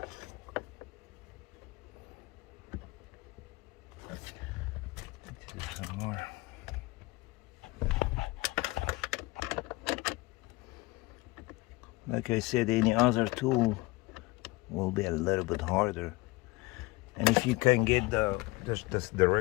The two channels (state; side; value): quieter; right; 22.1 dB